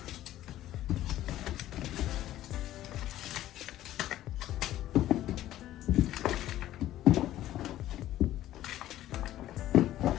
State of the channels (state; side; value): quieter; right; 13.7 dB